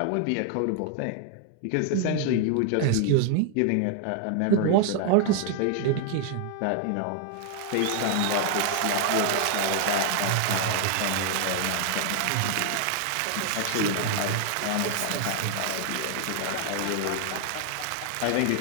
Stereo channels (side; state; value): both; different; correlation 0.00